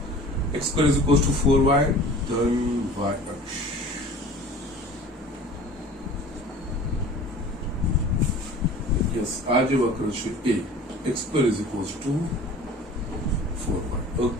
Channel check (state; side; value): normal; both; correlation 0.44